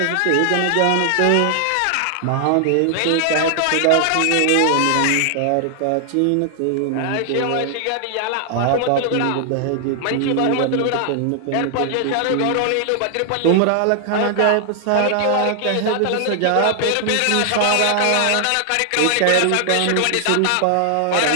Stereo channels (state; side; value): different; both; correlation 0.00